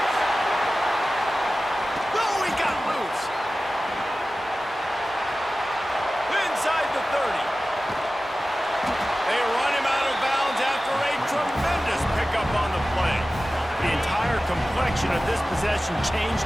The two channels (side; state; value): both; normal; correlation 0.96